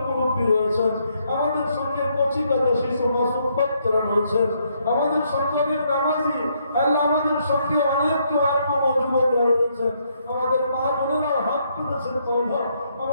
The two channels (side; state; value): both; inverted; correlation -0.73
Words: মুরব্বী রয়েছেন, আমাদের সঙ্গে কচি কাজা শিশু মাসুম বাচ্চারা রয়েছেন, আমাদের সঙ্গে অনেক নামাজি আল্লাহ, আমাদের সঙ্গে অনেক যুবকরা রয়েছেন, আমাদের মা বোনেরা হাত তুলেছেন।